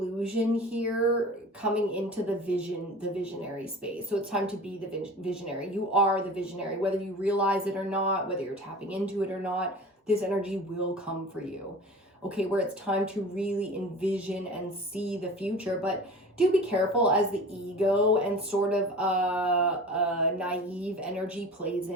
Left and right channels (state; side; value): normal; both; correlation 0.38